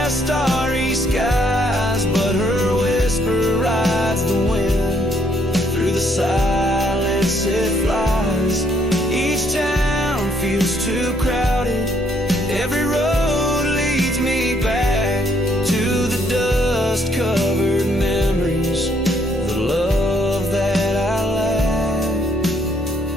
starry skies, but her whisper rides the wind. Through the silence it flies. Each town feels too crowded. Every road leads me back to the dust-covered memories, the love that I lack.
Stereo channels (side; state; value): both; normal; correlation 0.69